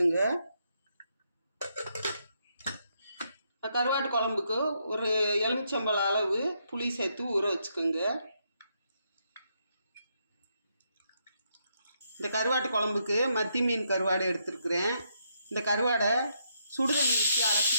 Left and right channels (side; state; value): both; inverted; correlation -0.77